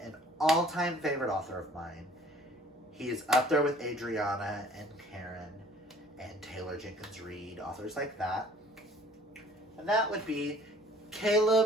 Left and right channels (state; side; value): normal; both; correlation 0.53